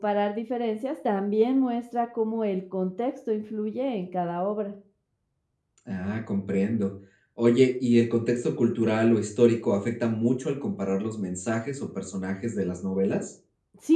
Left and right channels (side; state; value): both; identical; correlation 1.00